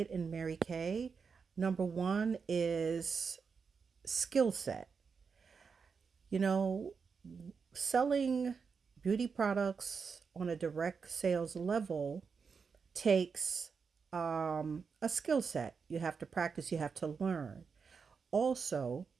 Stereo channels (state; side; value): quieter; left; 5.6 dB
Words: in Mary Kay, number one, is skill set. You know, selling beauty products on a direct sales level takes a skill set. You have to practice, you have to learn. Also,